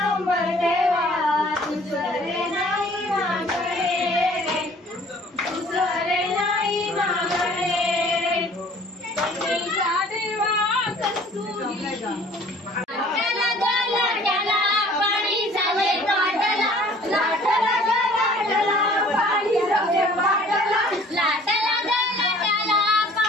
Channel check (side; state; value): both; normal; correlation 0.52